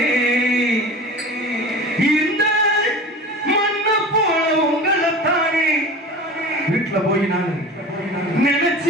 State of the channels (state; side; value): normal; both; correlation 0.36